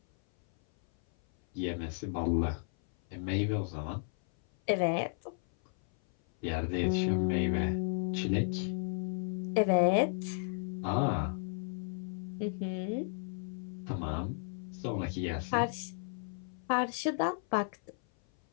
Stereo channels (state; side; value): silent; right; 55 dB below the other